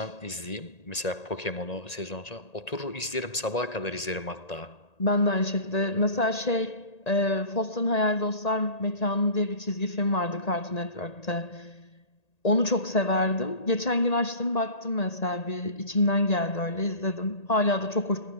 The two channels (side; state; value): right; late; 1.8 ms